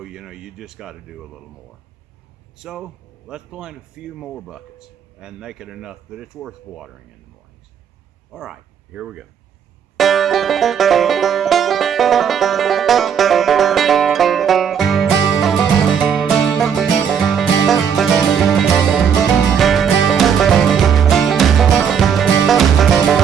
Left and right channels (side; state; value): left; quieter; 7.6 dB